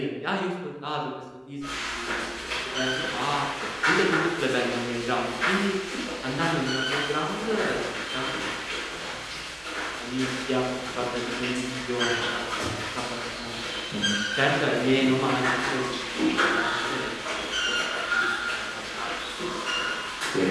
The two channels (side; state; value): both; identical; correlation 1.00